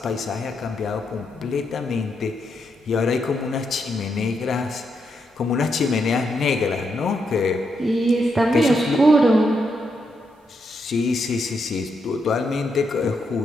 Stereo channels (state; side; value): normal; both; correlation 0.81